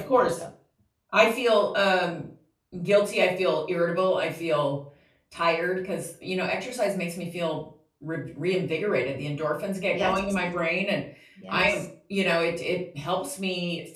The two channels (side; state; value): both; identical; correlation 1.00